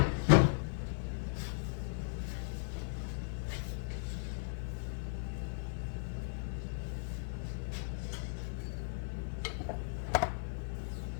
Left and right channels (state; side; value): silent; right; 53 dB below the other